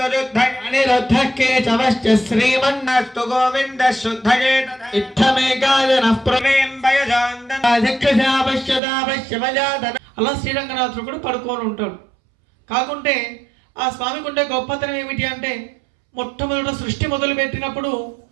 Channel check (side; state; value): left; drops out; at 8.8 s